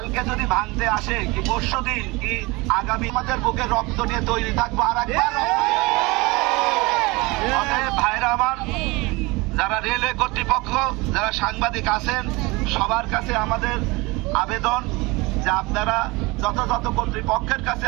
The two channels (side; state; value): left; quieter; 24.1 dB